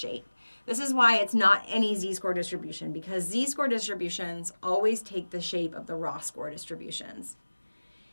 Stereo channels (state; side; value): inverted; both; correlation -1.00